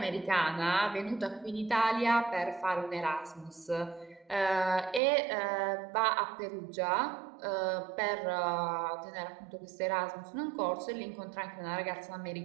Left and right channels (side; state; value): left; drops out; at 5.0 s